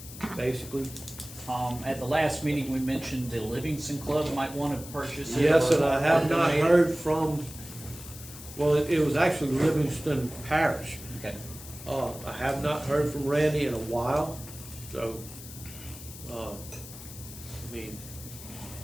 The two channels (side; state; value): left; noise; hiss, 14 dB below the sound